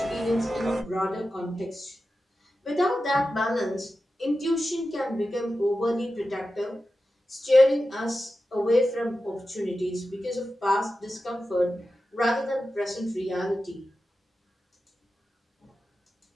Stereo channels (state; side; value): normal; both; correlation 0.92